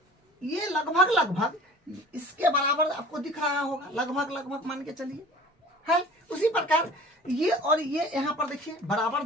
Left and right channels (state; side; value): normal; both; correlation 0.44